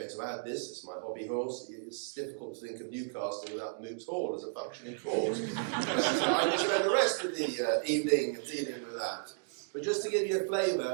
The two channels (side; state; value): left; silent; digital silence